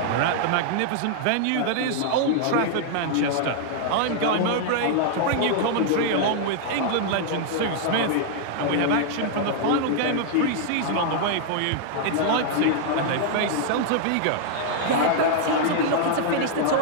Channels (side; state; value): both; different; correlation 0.00